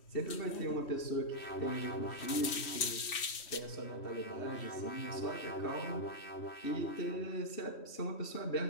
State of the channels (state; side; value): late; right; 3.1 ms